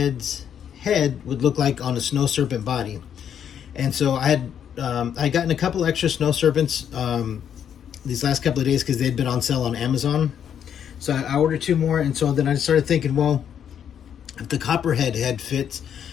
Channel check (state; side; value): quieter; right; 8.8 dB